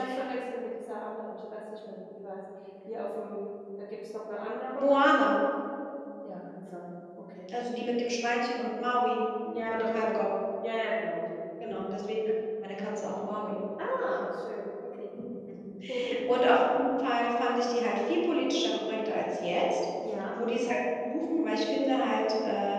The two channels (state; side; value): identical; both; correlation 1.00